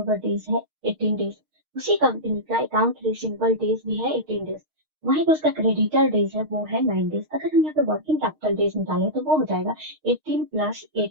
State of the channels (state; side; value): late; left; 6.5 ms